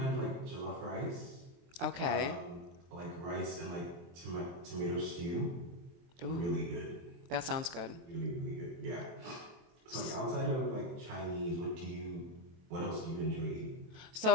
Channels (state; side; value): late; left; 23 ms